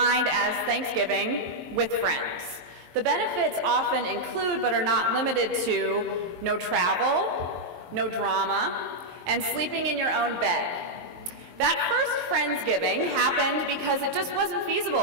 as Thanksgiving with friends. The benefits often include, but are not limited to, no travel, no drama, and sleeping in your own bed. That first Friendsgiving happened because it just wasn't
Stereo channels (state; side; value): late; left; 23 ms